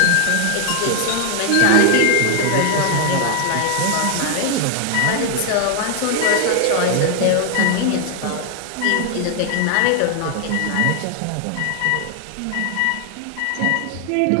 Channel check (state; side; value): different; both; correlation 0.00